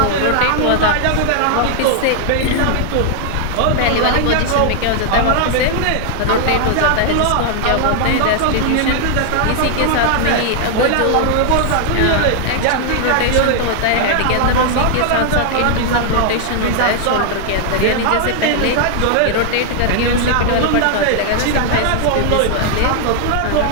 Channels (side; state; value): both; different; correlation 0.00